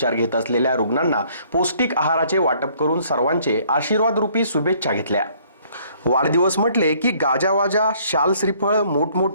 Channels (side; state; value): both; inverted; correlation -0.61